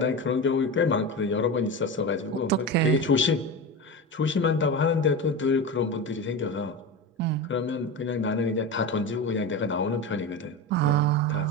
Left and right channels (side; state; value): both; normal; correlation 0.24